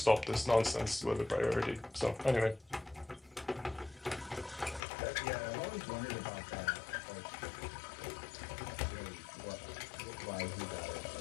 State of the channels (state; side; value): drops out; right; at 4.8 s